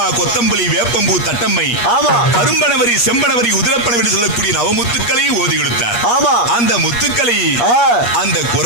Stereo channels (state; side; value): late; right; 8.4 ms